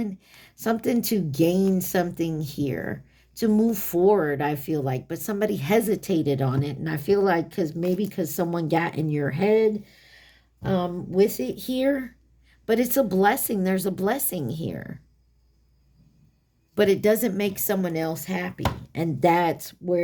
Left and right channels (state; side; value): identical; both; correlation 1.00